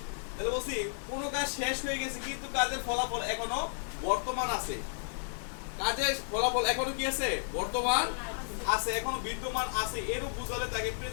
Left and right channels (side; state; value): right; silent; 56 dB below the other